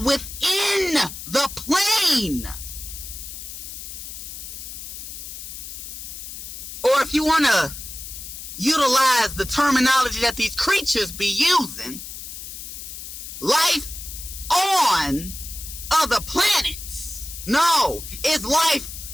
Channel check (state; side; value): noise; left; hiss, 10 dB below the sound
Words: within the plane. Or if you want to utilize the terminology that these creatures be using, life on other planets. No, it's life